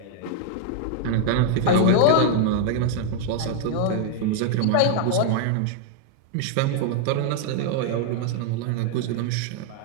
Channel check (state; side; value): different; both; correlation 0.00